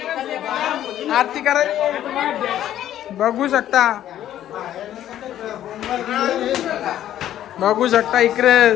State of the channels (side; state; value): right; quieter; 11.9 dB